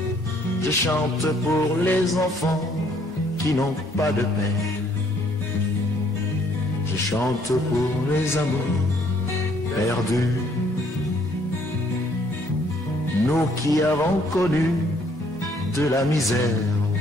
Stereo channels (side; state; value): both; normal; correlation 0.64